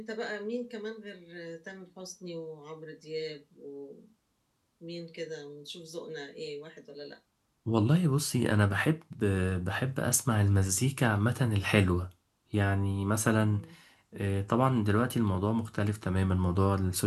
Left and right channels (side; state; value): both; identical; correlation 1.00